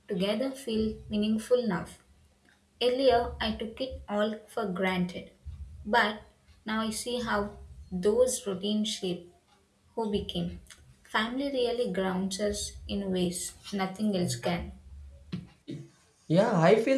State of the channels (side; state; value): both; identical; correlation 1.00